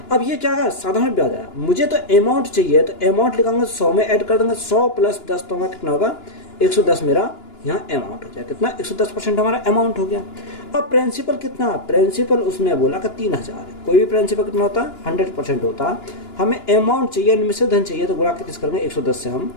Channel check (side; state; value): right; late; 2.9 ms